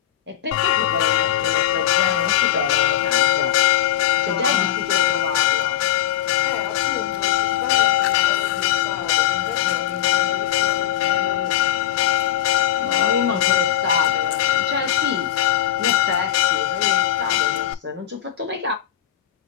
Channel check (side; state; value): right; quieter; 11.6 dB